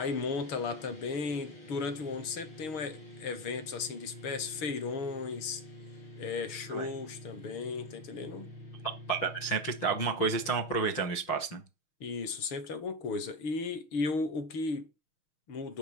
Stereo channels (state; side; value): late; right; 6.4 ms